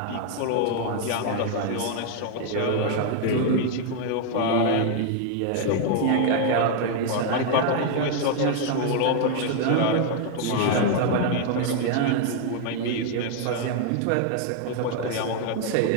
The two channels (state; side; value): different; both; correlation 0.00